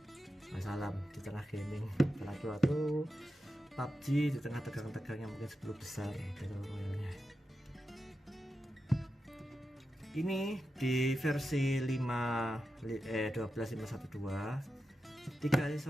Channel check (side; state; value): both; normal; correlation 0.90